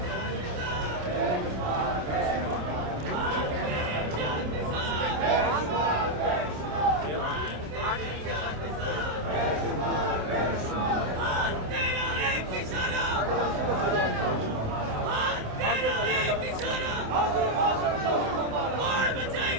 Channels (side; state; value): left; late; 27 ms